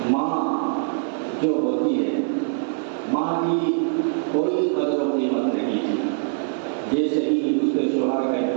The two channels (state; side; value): silent; left; 63 dB below the other